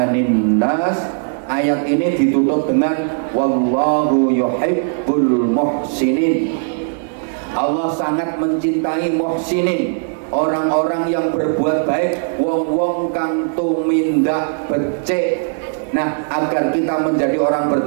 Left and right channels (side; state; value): left; silent; digital silence